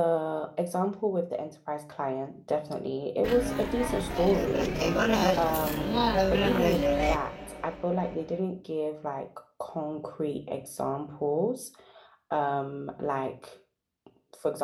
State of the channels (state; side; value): identical; both; correlation 1.00